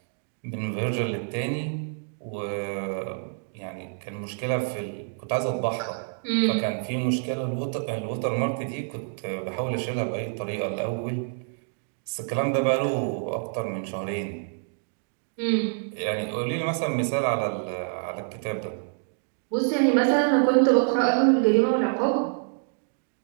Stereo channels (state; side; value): silent; left; digital silence